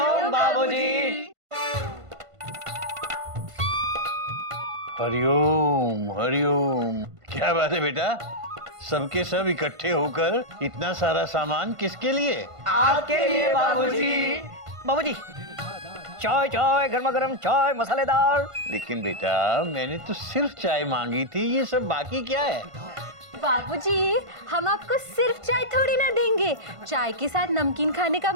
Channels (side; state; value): left; late; 1.5 ms